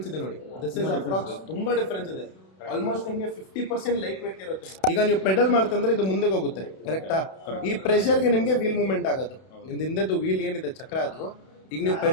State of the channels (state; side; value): late; right; 31 ms